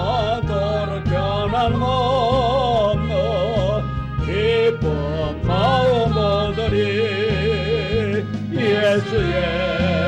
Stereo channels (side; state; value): both; identical; correlation 1.00